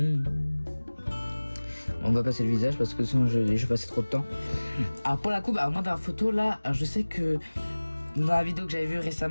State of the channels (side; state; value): both; inverted; correlation -1.00